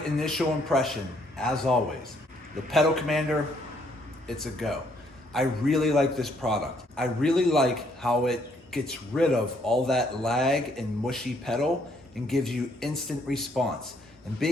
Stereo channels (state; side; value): normal; both; correlation 0.68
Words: initial impression, as always, the pedal commander, it's a go. I really like this product. I really like how it gets rid of all that lag and mushy pedal and gives you instant response. And